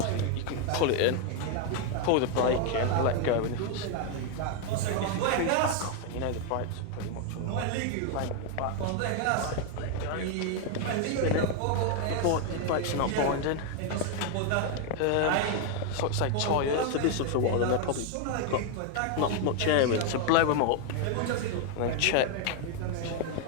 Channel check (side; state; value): both; different; correlation 0.01